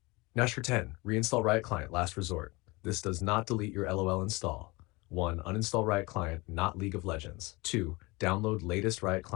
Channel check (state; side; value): quieter; right; 24.2 dB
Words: Hash 10. Reinstall Riot Client, last resort. This does not delete your LOL install. 1. Uninstall Riot Client, not League of Legends. 2. Download latest Riot